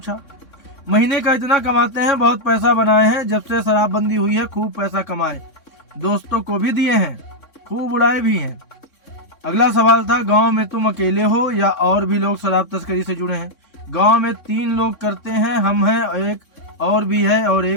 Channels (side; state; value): right; late; 3.6 ms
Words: महीने का इतना कमाते हैं, बहुत पैसा बनाए हैं। जब से शराबबंदी हुई है खूब पैसा कमाए, दोस्तों को भी दिए हैं, खूब उड़ाए भी हैं। अगला सवाल था, गांव में तुम अकेले हो या और भी लोग शराब तस्करी से जुड़े हैं? गांव में 3 लोग करते हैं, हम हैं, एक और भी है और